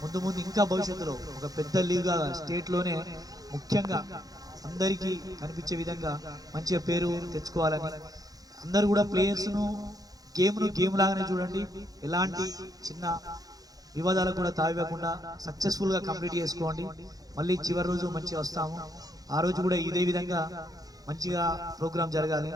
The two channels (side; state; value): left; late; 0.18 ms